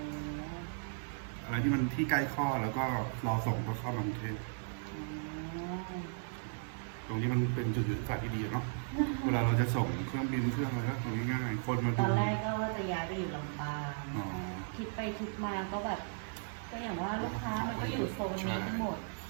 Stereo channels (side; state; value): left; silent; 54 dB below the other